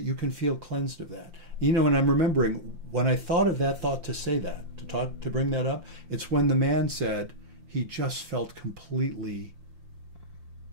you can feel cleansed of that. You know, and I'm remembering when I thought of that thought to say that, to bring that up, it's when the man said he just felt completely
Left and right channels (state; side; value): late; left; 5.7 ms